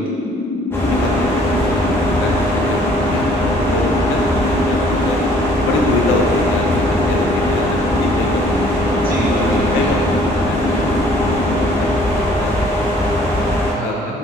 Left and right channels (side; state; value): both; normal; correlation 0.58